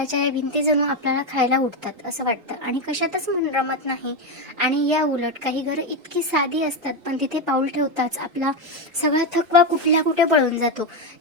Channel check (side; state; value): left; late; 1.9 ms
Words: या भिंती जणू आपल्याला खायला उठतात असं वाटतं आणि कशातच मन रमत नाही. आणि या उलट काही घरं इतकी साधी असतात, पण तिथे पाऊल ठेवताच आपला सगळा थकवा कुठल्या कुठे पळून जातो.